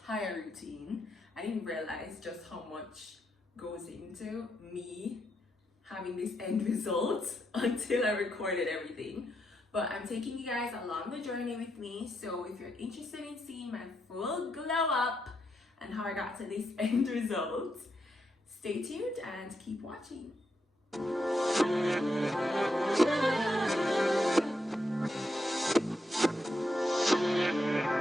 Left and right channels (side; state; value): both; normal; correlation 0.81